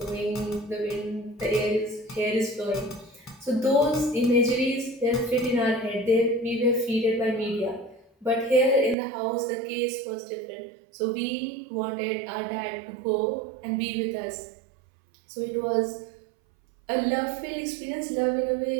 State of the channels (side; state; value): left; drops out; at 9.0 s